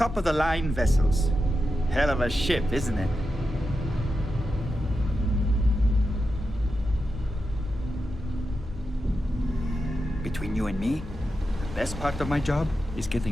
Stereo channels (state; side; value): normal; both; correlation 0.89